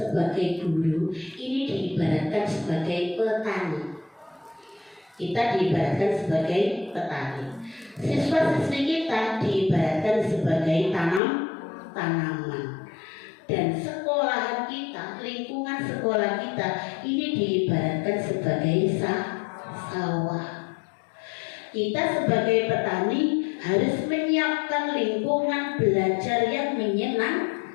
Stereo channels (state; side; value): drops out; right; at 11.2 s